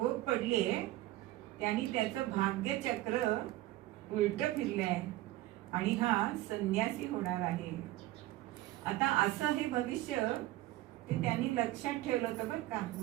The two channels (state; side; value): quieter; left; 16.6 dB